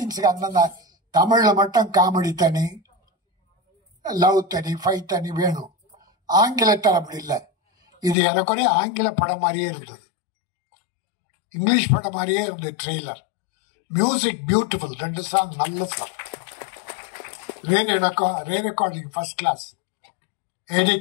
அந்தந்த தமிழ்ல மட்டும் காமெடி தனி, லவ் தனி, ஃபைட் தனி வேணும். ஆங்கிலத்தில் அப்படி இல்லை. இது எனக்குரிய ஆங்கில படம் மாதிரியே இருந்தது, இங்கிலீஷ் படம் மாதிரியே இருந்தது ட்ரெய்லர். மியூசிக் பியூட்டிஃபுல், 2 சாங் நல்ல song, re recording first class,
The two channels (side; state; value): right; drops out; at 8.2 s